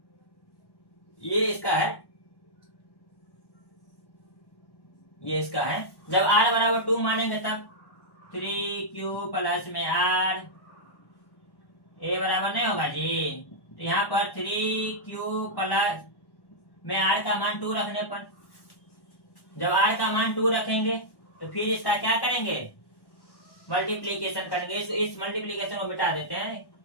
ये इसका है, ये इसका है। जब r बराबर 2 मानेंगे तब 3q प्लस में r, ए बराबर नहीं होगा जी। तो यहाँ पर 3q प्लस में r का मान 2 रखने पर, जब r का मान 2 रखेंगे तो फिर इसका क्या करेंगे? मल्टीप्लीकेशन करेंगे। इस मल्टीप्लीकेशन को मिटा देते हैं।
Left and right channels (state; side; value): late; right; 1.1 ms